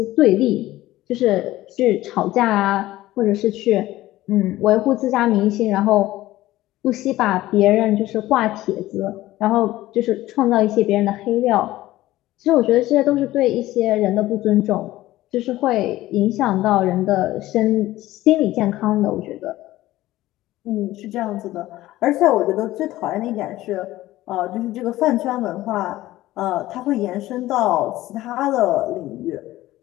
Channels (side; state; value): right; quieter; 16.2 dB